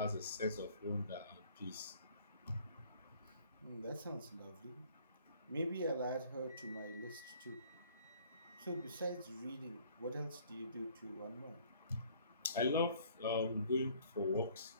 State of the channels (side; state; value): both; inverted; correlation -0.57